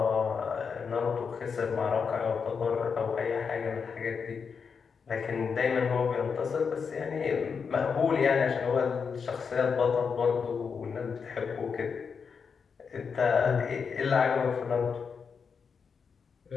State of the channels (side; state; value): right; quieter; 5.9 dB